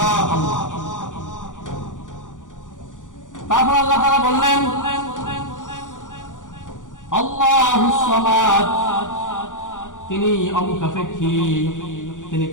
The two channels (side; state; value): right; late; 0.87 ms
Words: আল্লাহ। তারপর আল্লাহ তাআলা বললেন, আল্লাহুস সামাদ, তিনি অমুখাপেক্ষী, তিনি